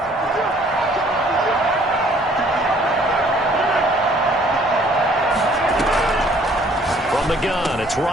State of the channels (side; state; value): both; normal; correlation 0.59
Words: From the gun, it's